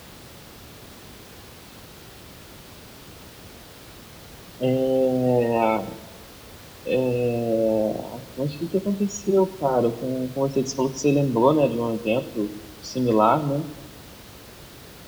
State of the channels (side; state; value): both; identical; correlation 1.00